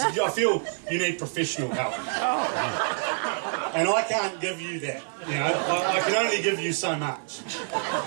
I feel you need professional help. And I can't give you that, you know, I can only give you so much.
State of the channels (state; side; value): silent; left; digital silence